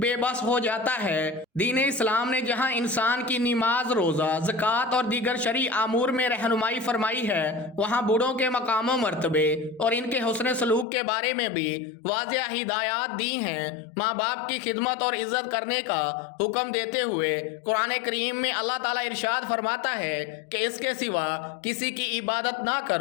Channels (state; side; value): drops out; right; at 10.9 s